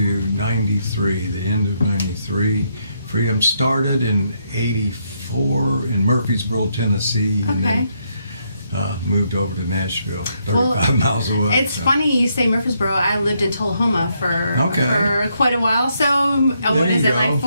'93, the end of '93. Freedom started in '84 in Murfreesboro, Tennessee, and then moved over to Nashville, 35 miles away. It's funny you say Murfreesboro. I lived in Tullahoma for quite a while. So what is it, like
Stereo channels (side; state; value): both; inverted; correlation -0.76